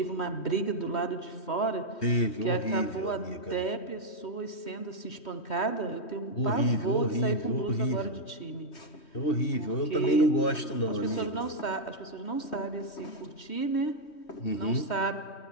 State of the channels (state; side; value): late; right; 3.2 ms